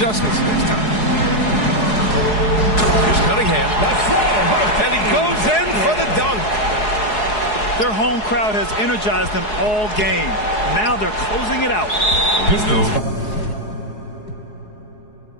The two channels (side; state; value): right; late; 4.7 ms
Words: next time. Here's Cunningham. And he goes in for the dunk. Their home crowd has energized them all game. Now they're closing it out. You know,